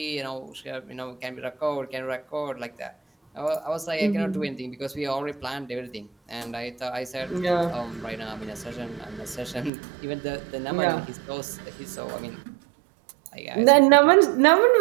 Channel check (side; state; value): left; drops out; at 9.7 s